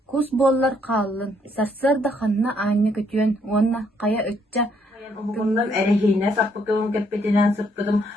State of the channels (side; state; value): both; normal; correlation 0.69